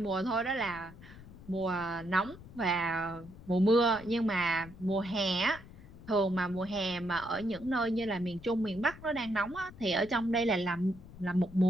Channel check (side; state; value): left; noise; rumble, 18 dB below the sound